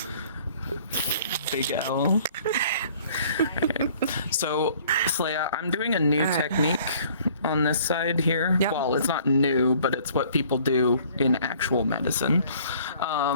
Big L. Okay. So, Slaya, I'm doing a new technique on this side here. Yep. Well, it's not new, but it's what people do in actual medicine.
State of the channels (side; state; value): both; inverted; correlation -0.55